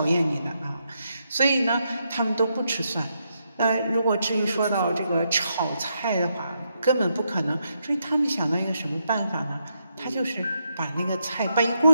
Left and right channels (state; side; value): inverted; both; correlation -0.81